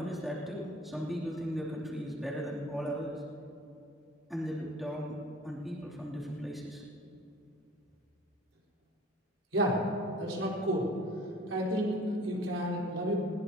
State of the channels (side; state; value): both; normal; correlation 0.48